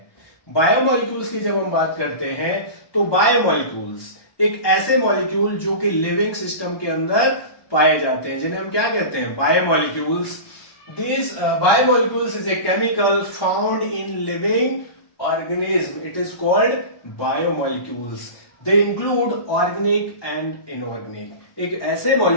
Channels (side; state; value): right; late; 1.2 ms